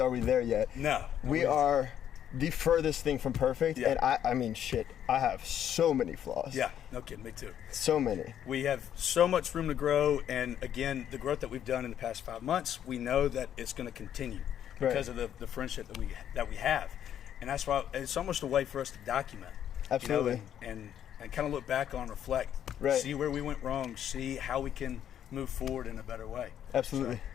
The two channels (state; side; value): quieter; right; 10.0 dB